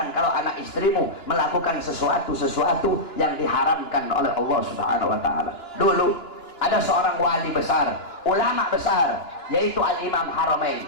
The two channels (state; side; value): late; right; 2.9 ms